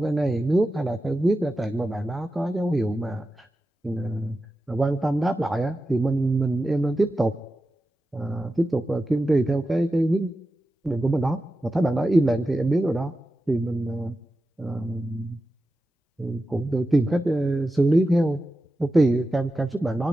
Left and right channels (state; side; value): normal; both; correlation 0.92